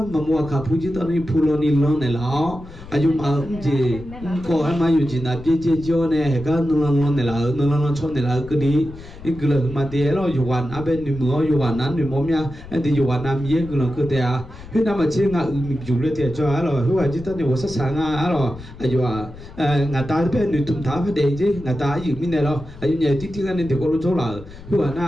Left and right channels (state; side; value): noise; left; rumble, 16 dB below the sound